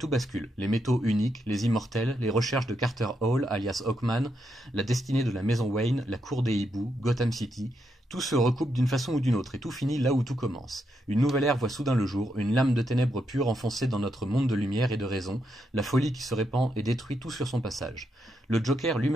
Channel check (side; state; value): both; normal; correlation 0.81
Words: bascule. Les métaux uniques, les immortels, les recherches de Carter Hall, alias Hawkman, la destinée de la maison Wayne, la cour des hiboux, Gotham City, tout se recoupe d'une façon ou d'une autre, et tout finit là où tout commence. Une nouvelle ère voit soudain le jour, une lame de ténèbres pure enfoncée dans notre monde de lumière et de raison, la folie qui se répand et détruit tout sur son passage. Le Joker